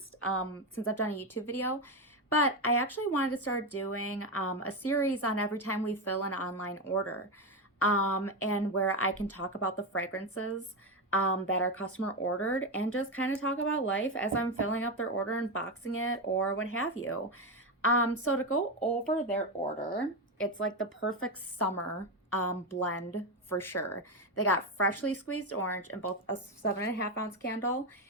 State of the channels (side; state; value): both; normal; correlation 0.11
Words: since I've done a YouTube video, but I actually wanted to start doing a series on every time we fill an online order, and where I can talk about the fragrances that our customer ordered and just kind of talk about life as I'm filling up their order and boxing it or what have you. So to go over their order, it's like the perfect summer blend for sure. They got freshly squeezed orange in both a 7.5 ounce candle